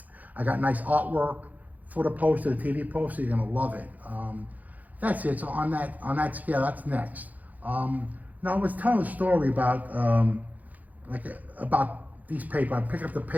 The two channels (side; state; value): left; late; 0.079 ms